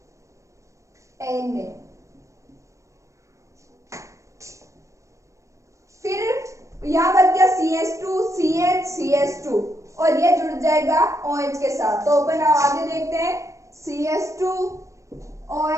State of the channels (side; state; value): left; late; 0.15 ms